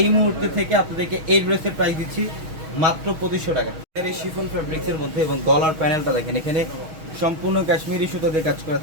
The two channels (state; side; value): late; left; 6.3 ms